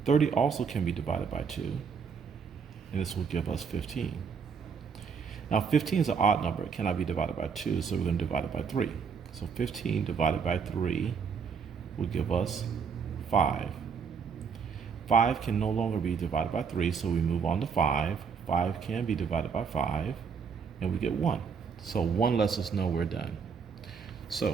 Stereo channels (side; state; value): left; quieter; 6.1 dB